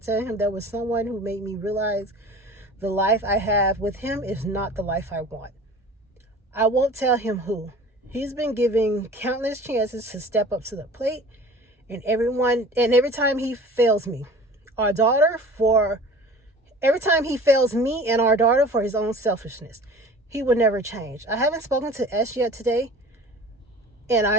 him there was someone who made me realize the life I have with him is not the life I want. I won't tell him who. He's been given countless chances to step up to the plate, and every time he fails me, every time he fails me and our daughter for his own selfishness, he will never change. I haven't spoken to S yet today, and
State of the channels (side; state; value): both; normal; correlation 0.42